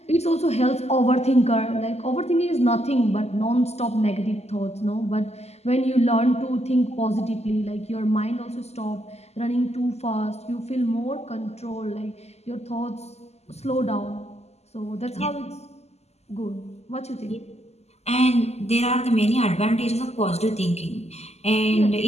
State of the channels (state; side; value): late; right; 0.31 ms